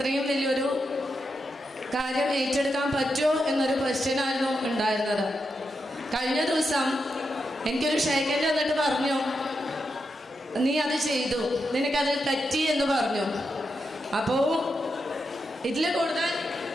വലിയൊരു കാര്യം ഏറ്റെടുക്കാൻ പറ്റുമോ എന്നൊരു ക്വസ്റ്റ്യനായിരുന്നു ഉണ്ടായിരുന്നത്. കഴിഞ്ഞ ദിവസം എനിക്കൊരു ഷേക്കൻഡ് വന്നിട്ട് പറഞ്ഞു, നീ അത് ചെയ്തു, നിനക്കത് പറ്റി എന്ന് പറഞ്ഞു. അപ്പോൾ ഇതിൽ കൂടുതൽ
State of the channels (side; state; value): both; normal; correlation 0.86